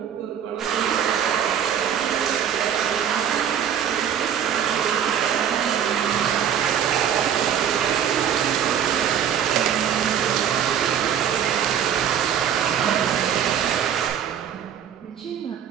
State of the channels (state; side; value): quieter; left; 9.0 dB